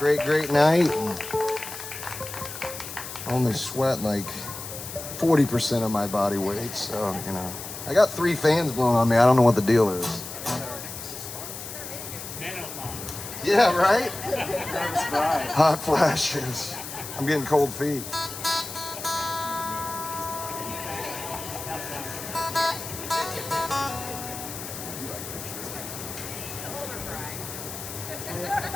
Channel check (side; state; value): left; noise; hiss, 10 dB below the sound